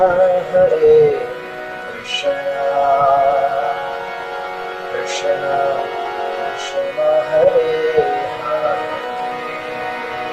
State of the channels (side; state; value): both; identical; correlation 1.00